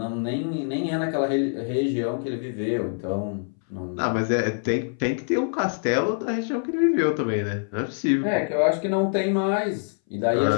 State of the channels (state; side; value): silent; right; 62 dB below the other